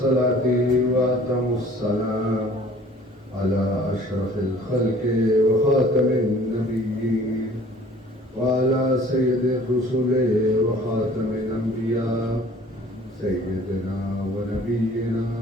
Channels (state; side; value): normal; both; correlation 0.51